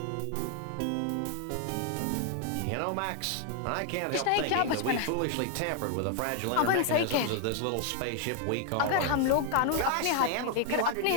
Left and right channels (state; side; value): different; both; correlation 0.00